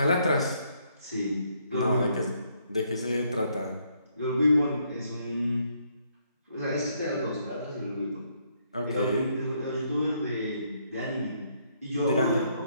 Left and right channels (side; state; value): both; inverted; correlation -0.72